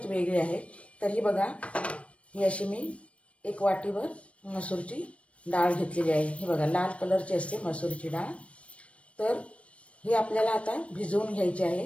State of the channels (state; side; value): late; right; 0.062 ms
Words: वेगळी आहे। तर ही बघा, ही अशी मी एक वाटीवर मसूरची डाळ घेतलेली आहे। ही बघा लाल कलरची असते मसूरची डाळ। तर ही आपल्याला आता भिजवून घ्यायची